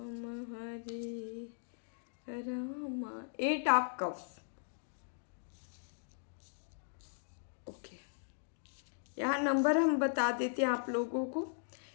8 of cups. यहाँ नंबर हम बता देते हैं आप लोगों को।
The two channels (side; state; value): right; silent; digital silence